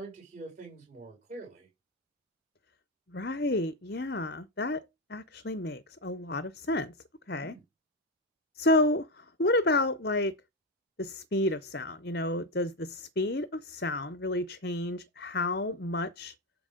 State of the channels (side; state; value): both; normal; correlation 0.10